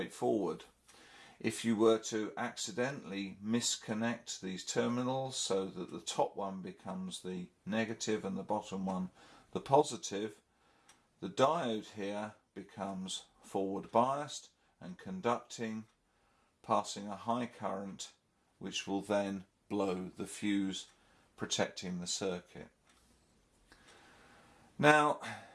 If you were to accidentally misconnect these terminals so that the top one becomes the negative and the bottom one the positive, the diode here becomes forward biased and conducting, passing a high current which will then blow the fuse, protecting the circuit. Now,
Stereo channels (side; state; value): both; identical; correlation 1.00